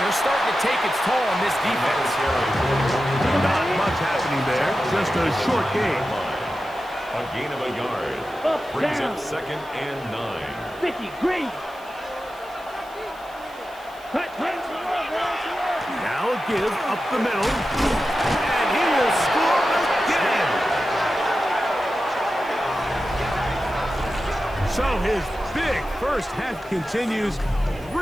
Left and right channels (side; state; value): right; noise; hiss, 25 dB below the sound